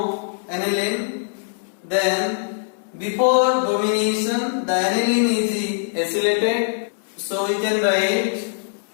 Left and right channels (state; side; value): silent; right; digital silence